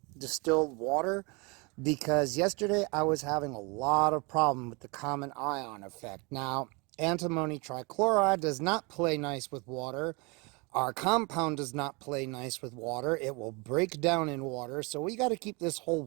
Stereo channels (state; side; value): quieter; left; 28.9 dB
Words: distilled water because yesterday I was having a lot of problem with the common ion effect. Now, antimony trichloride does not play nice with water. Our compound does not play nice with water. It will break down in water. So we got to keep this whole